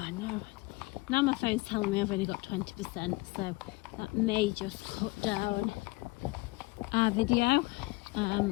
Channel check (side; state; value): right; quieter; 23.2 dB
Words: no, now my phone's telling me I've only got 20%, so that may just cut down our video.